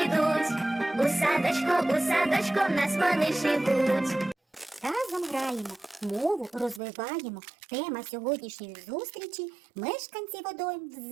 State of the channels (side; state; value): left; drops out; at 6.8 s